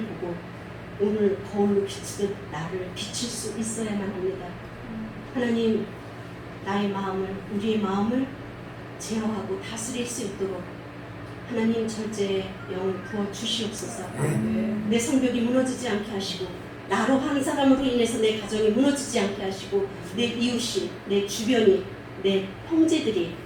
보고 오늘 거울로 비추듯 나를 비칠 수 있어야만 합니다. 하나님 나의 마음을 우리의 마음을 제어하고 다스릴 수 있도록 하나님 절제의 영을 부어 주시옵소서. 내 성벽이 무너지지 않게 하시고 나로 한 사람으로 인해서 내 가정이 무너지지 않게 하시고 내 이웃이 내 주변이 내 형제들이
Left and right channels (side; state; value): both; identical; correlation 1.00